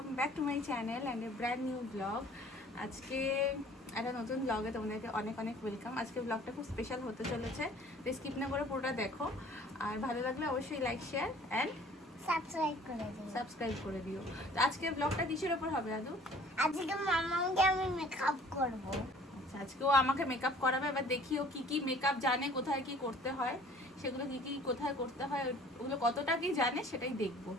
back to my channel and a brand new blog. আজকে একটা নতুন ব্লগে তোমাদেরকে অনেক অনেক ওয়েলকাম। আজকে ব্লগটা খুব স্পেশাল হতে চলেছে, তো স্কিপ না করে পুরোটা দেখো। আর ভালো লাগলে অবশ্যই লাইক, শেয়ার অ্যান্ড সাবস্ক্রাইব করে দিও। তো আজকে ব্লগটা কিসের ওপর হবে দাদু? আজকে মামাকে আমি মেকআপ করব। আচ্ছা, আজকেও আমাকে মেকআপ করাবে। এবার দেখিও কি কি মেকআপ জানে, কোথায় কি করতে হয়, সেগুলো কি কি কোথায় করতে হয়, ওগুলো কতটা কি জানে সেটাই দেখবো।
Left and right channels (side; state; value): both; normal; correlation 0.52